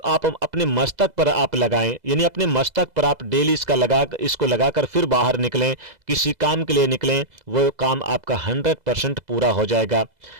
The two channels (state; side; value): late; left; 2.0 ms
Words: आप अपने मस्तक पर आप लगाएं, यानी अपने मस्तक पर आप डेली इसको लगाकर फिर बाहर निकलें, किसी काम के लिए निकलें, वो काम आपका 100% पूरा हो जाएगा।